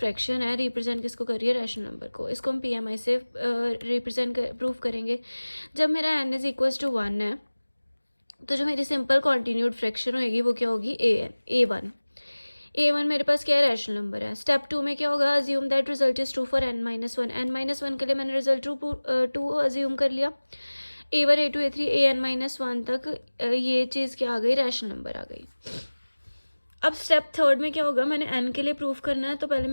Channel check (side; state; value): both; inverted; correlation -1.00